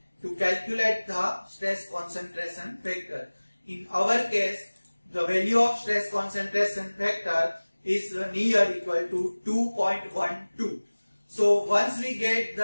to calculate the stress concentration factor. In our case, the value of stress concentration factor is near equal to 2.12. So once we get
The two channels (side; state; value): both; inverted; correlation -1.00